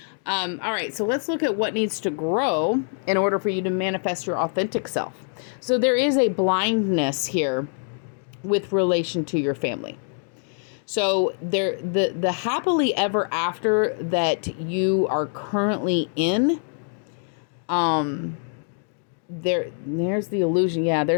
All right, so let's look at what needs to grow in order for you to manifest your authentic self. So there is a blindness here with relation to your family. So the happily ever after that you are currently in, there's the illusion. Yeah,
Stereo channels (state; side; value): silent; right; 55 dB below the other